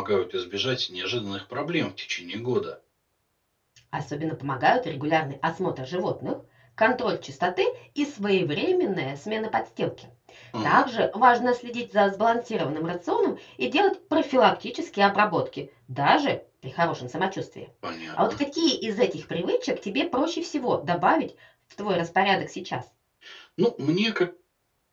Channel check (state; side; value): identical; both; correlation 1.00